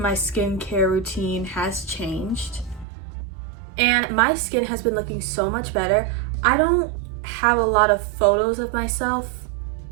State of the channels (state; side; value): drops out; left; at 2.9 s